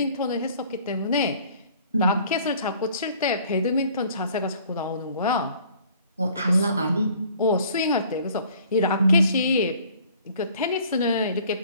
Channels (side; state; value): both; inverted; correlation -0.54